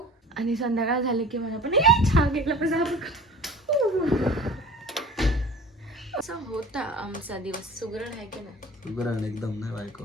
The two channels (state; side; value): normal; both; correlation 0.42